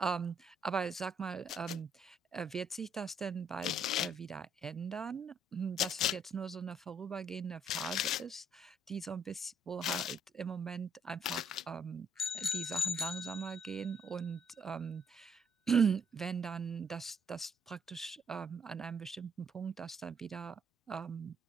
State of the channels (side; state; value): both; normal; correlation 0.68